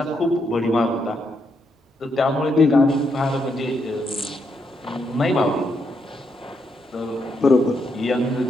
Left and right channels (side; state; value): both; normal; correlation 0.79